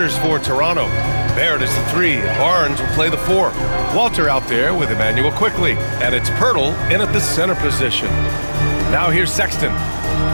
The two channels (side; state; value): both; inverted; correlation -1.00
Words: for Toronto. Barrett is the 3. Barnes will play the 4. Walter out there with Emmanuel quickly. And it's Pirtle in at the center position. Now here's Sexton.